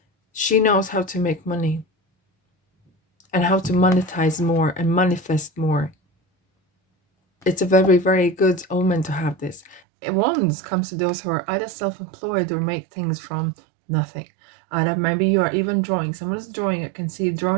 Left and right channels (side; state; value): left; drops out; at 9.8 s